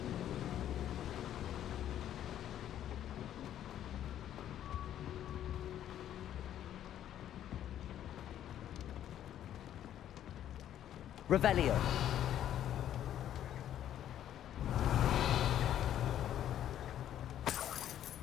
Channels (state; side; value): quieter; right; 11.1 dB